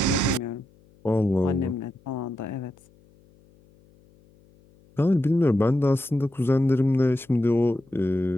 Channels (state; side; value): noise; left; hum, 30 dB below the sound